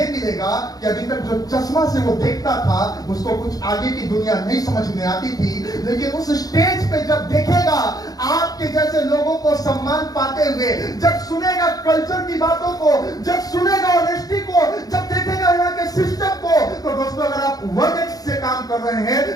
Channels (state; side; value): late; right; 0.18 ms